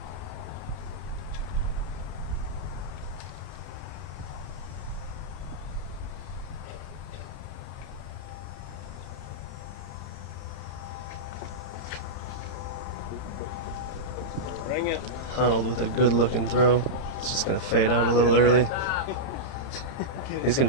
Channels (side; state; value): right; late; 31 ms